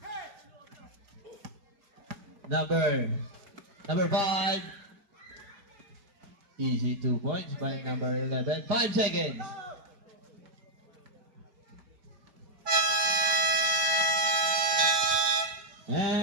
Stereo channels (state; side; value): late; left; 5.0 ms